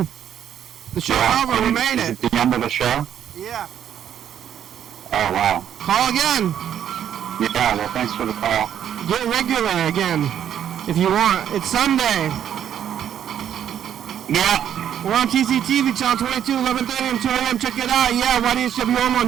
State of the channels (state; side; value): quieter; left; 9.8 dB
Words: The show's over. We made it. The end of the show? Yeah. Oh, wow. Call again. Yeah, well, thanks for the call. Get regular again, if you want. It's Sunday. Yeah. We're on TCTV, channel 22, 11:30 and 2 a.m. Check it out. Yeah, YDHWM on